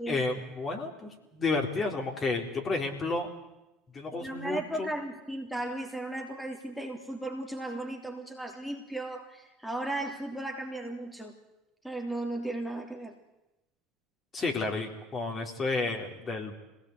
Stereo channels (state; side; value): normal; both; correlation 0.68